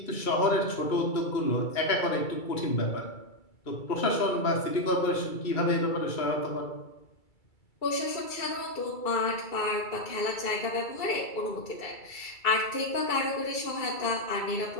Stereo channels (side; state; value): right; late; 2.3 ms